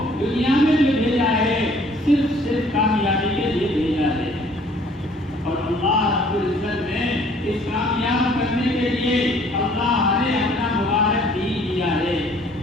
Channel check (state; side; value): normal; both; correlation 0.57